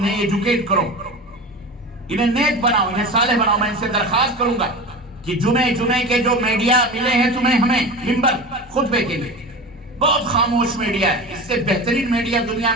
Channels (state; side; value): normal; both; correlation 0.30